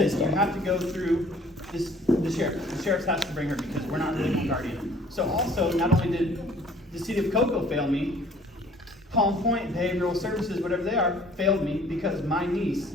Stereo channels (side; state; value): both; normal; correlation 0.55